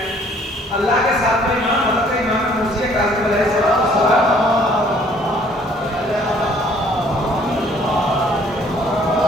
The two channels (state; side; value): normal; both; correlation 0.59